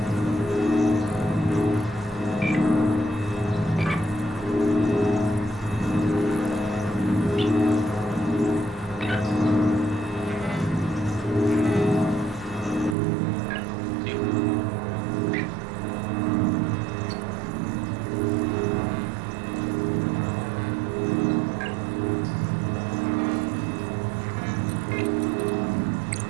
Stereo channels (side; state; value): left; drops out; at 13.0 s